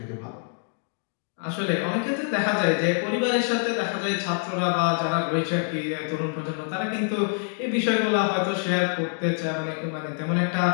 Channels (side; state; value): right; silent; 61 dB below the other